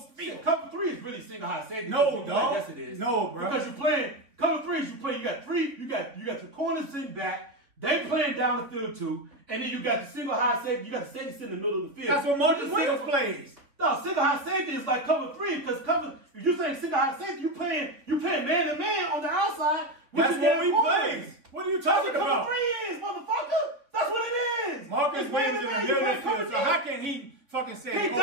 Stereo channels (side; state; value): left; late; 3.3 ms